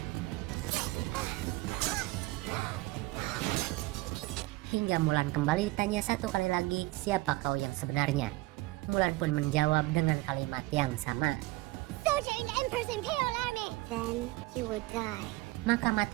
Hingga Mulan kembali ditanya satu kali lagi, "Siapa kau yang sebenarnya?" Mulan pun menjawab dengan kalimat yang sama, "Soldier in the Emperor's Imperial Army." "Then you will die." Maka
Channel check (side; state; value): left; quieter; 20.7 dB